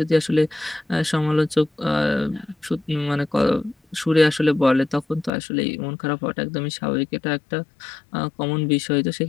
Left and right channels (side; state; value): right; drops out; at 5.3 s